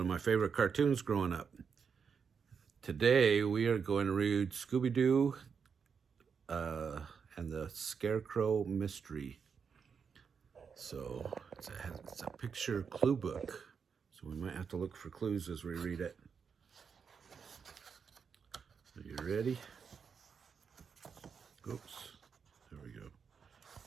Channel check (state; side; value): quieter; left; 6.2 dB